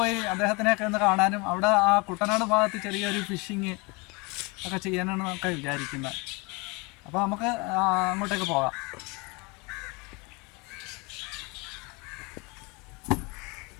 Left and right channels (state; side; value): quieter; right; 28.0 dB